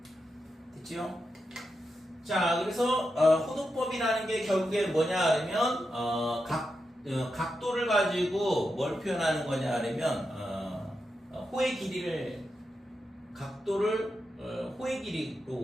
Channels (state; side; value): normal; both; correlation 0.87